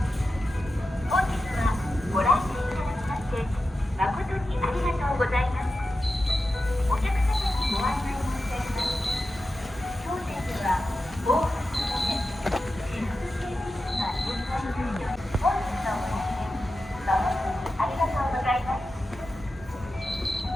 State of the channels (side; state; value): both; normal; correlation 0.92